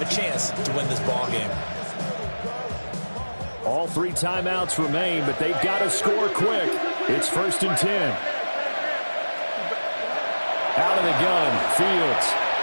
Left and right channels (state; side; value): inverted; both; correlation -1.00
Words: a chance to win this ball game. All 3 timeouts remain, but they've got to score quick. It's 1st and 10. Out of the gun, Fields.